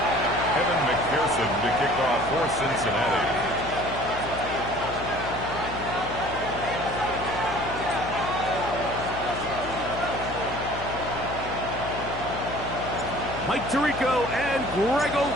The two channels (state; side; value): noise; left; hum, 10 dB below the sound